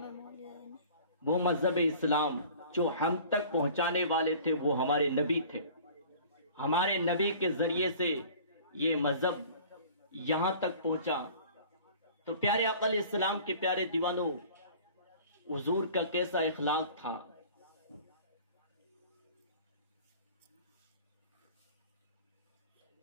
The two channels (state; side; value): inverted; both; correlation -0.46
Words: وہ مذہب اسلام جو ہم تک پہنچانے والے تھے وہ ہمارے نبی تھے. ہمارے نبی کے ذریعے سے یہ مذہب یہاں تک پہنچا. تو پیارے آقا علیہ السلام کے پیارے دیوانوں, حضور کا کیسا اخلاق تھا.